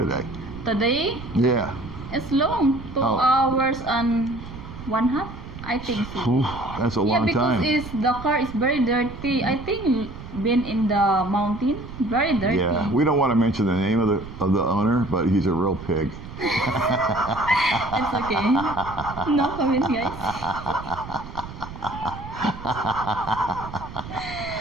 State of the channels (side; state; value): right; noise; rumble, 13 dB below the sound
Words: Today, Yeah. it's long. 2 Oh. hours and 1/2. I think so. Ooh, that's a long because time. the car is very dirty. I think been in the mountain, very dirty. Yeah, we don't want to mention the name of the owner, but he's a real pig. It's okay. No comment, guys.